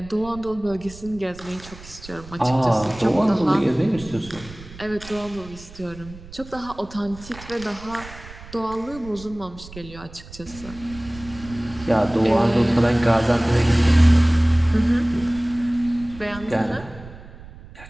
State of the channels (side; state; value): right; noise; rumble, 17 dB below the sound